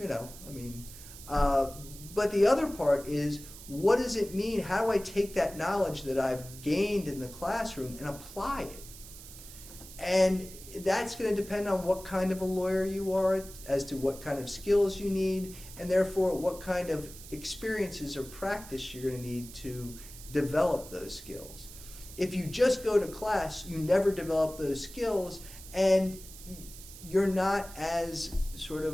but the other part is, what does it mean? How do I take that knowledge that I've gained in the classroom and apply it? And that's going to depend on what kind of a lawyer you are, as to what kind of skills you need, and therefore what kind of experiences or practice you're going to need to develop those skills. If you just go to class, you never develop those skills, and you're not as sort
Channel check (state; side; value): noise; right; hiss, 16 dB below the sound